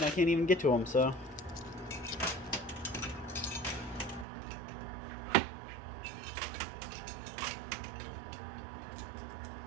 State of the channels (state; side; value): drops out; left; at 4.2 s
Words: I can't even get to them, so.